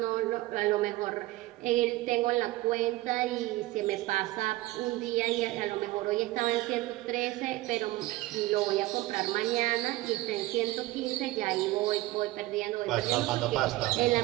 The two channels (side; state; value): left; quieter; 18.2 dB